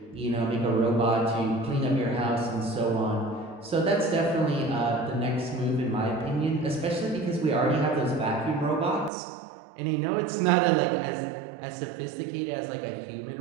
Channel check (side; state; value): left; drops out; at 9.1 s